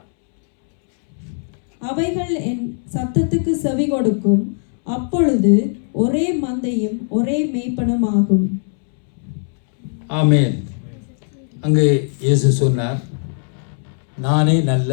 அவைகள் என் சத்தத்துக்கு செவி கொடுக்கும். அப்பொழுது ஒரே மந்தையும் ஒரே மேய்ப்பனும் ஆகும். ஆமென். அங்கே இயேசு சொன்னார், நானே நல்ல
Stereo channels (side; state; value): right; silent; 66 dB below the other